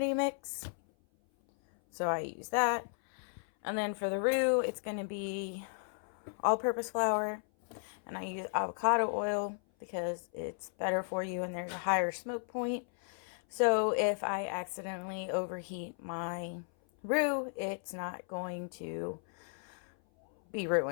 mix. So I use that. And then for the roux, it's going to be all-purpose flour. And I use avocado oil because it's better for you and there's a higher smoke point. So if I accidentally overheat my roux, it's not going to be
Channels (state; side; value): silent; right; 54 dB below the other